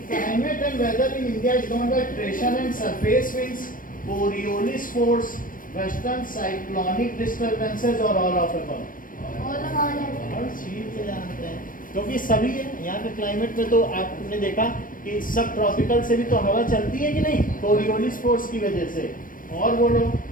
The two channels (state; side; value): late; right; 0.40 ms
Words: climate and weather in India is govern by pressure and surface winds, Coriolis force, western cyclonic disturbances और ऑल ऑफ अबव। हर चीज जानते हैं क्योंकि सभी है। यहाँ पे क्लाइमेट में तो आपने देखा कि सब ट्रॉपिकल से भी तो हवा चलती है कि नहीं, कोरियोलिस फोर्स की वजह से। और बोलो